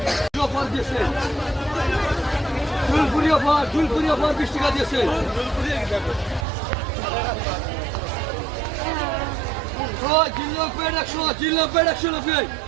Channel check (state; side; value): drops out; left; at 6.5 s